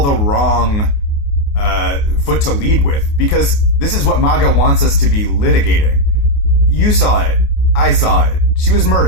the wrong foot to lead with, because this is what MAGA wants us to be litigating. You saw it. I saw it. She was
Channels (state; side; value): late; right; 28 ms